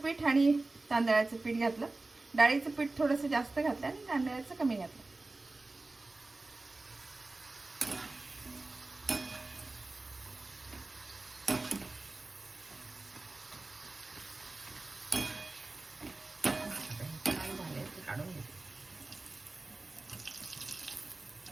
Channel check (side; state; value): left; quieter; 3.2 dB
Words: आणि तांदळाचं पीठ घातलं. डाळीचं पीठ थोडंसं जास्त घातलं आणि तांदळाचं कमी घातलं. काढून घेते.